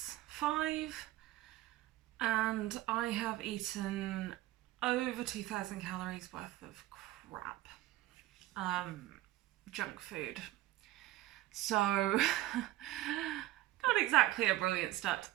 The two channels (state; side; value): quieter; left; 15.9 dB